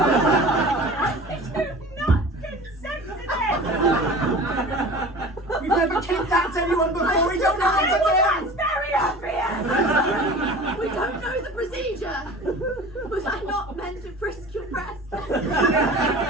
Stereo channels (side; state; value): both; normal; correlation 0.39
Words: I do not consent to this! We've never kidnapped anyone before. We don't know how to do That's very obvious! We don't know the procedure. Was I not meant to frisk your breast? I'm